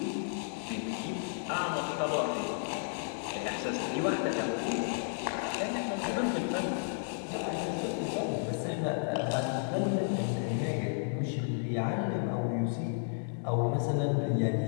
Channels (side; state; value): right; silent; digital silence